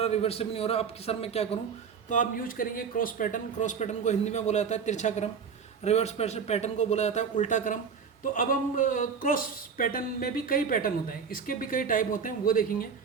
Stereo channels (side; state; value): left; quieter; 6.2 dB